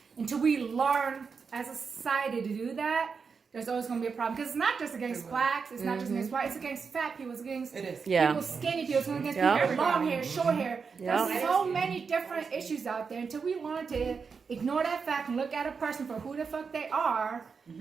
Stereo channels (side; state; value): left; quieter; 5.5 dB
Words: until we learn as a society to do that, there's always going to be a problem. Because it's not just against blacks, it's not just against white, it's against fat people, it's against It is. Yeah. people skinny people, it's against Yeah. people with long hair, short hair. Yeah. There's so many different issues out there. Until we learn to ignore that fact and look at a person for who the fuck they are,